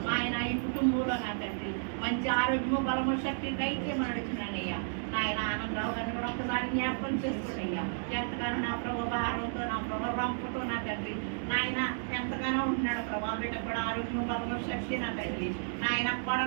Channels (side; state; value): left; silent; digital silence